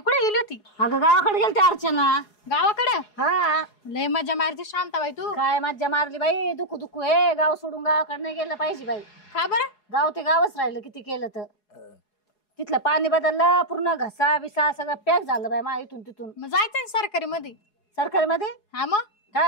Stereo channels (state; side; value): late; right; 4.8 ms